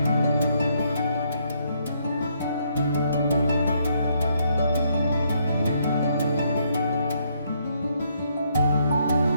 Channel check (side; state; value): both; inverted; correlation -0.72